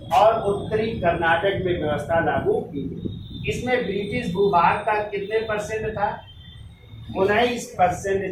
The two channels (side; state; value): both; identical; correlation 1.00